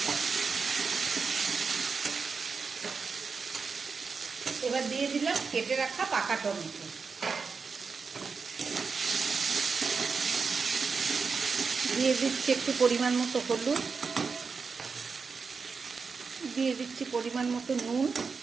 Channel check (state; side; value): quieter; left; 5.1 dB